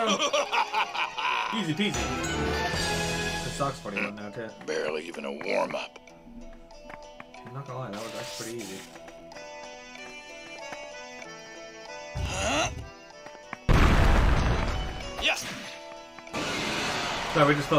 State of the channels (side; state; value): both; identical; correlation 1.00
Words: Easy peasy. This sucks 41 now too. Barely even a warm-up. I'm not gonna lie, that was actually pretty easy. Yes! So we're just